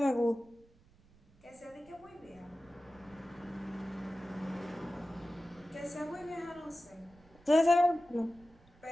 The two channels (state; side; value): noise; right; rumble, 28 dB below the sound